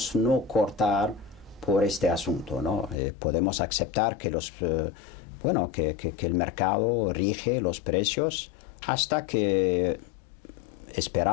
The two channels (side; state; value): right; drops out; at 3.0 s